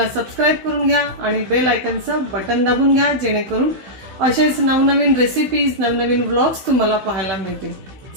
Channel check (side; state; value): left; late; 16 ms